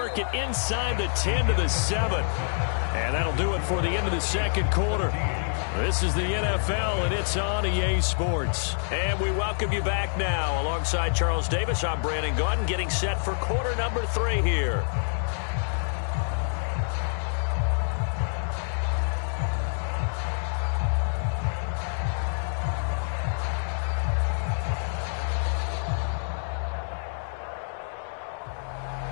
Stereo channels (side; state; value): right; silent; 60 dB below the other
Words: it inside the 10 to the 7. And that'll do it for the end of the second quarter. This is the NFL, and it's on EA Sports. And we welcome you back now. Alongside Charles Davis, I'm Brandon Gaudin, getting set for quarter number 3 here.